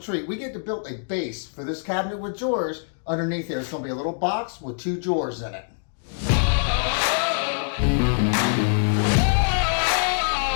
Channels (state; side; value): silent; right; digital silence